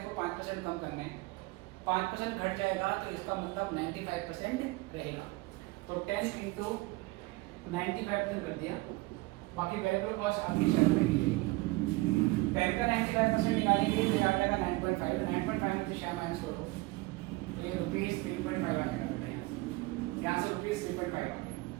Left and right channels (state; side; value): quieter; left; 22.0 dB